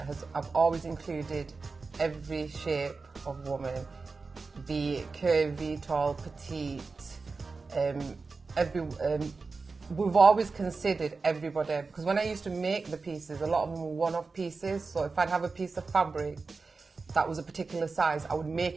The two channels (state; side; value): quieter; left; 4.2 dB